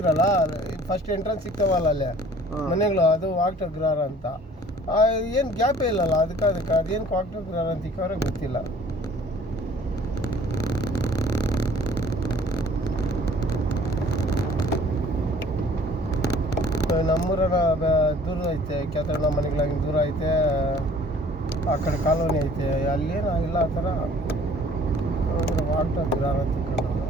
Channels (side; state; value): both; normal; correlation 0.53